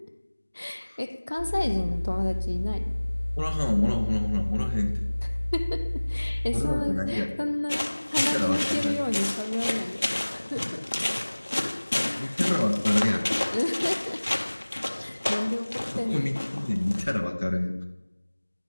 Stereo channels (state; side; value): inverted; both; correlation -1.00